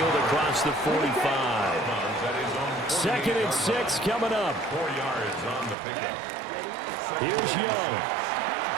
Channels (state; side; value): drops out; left; at 5.8 s